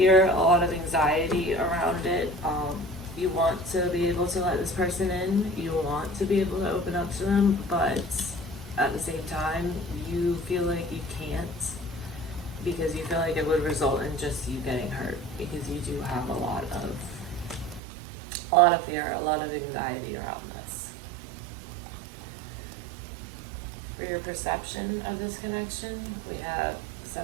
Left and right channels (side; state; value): left; drops out; at 17.8 s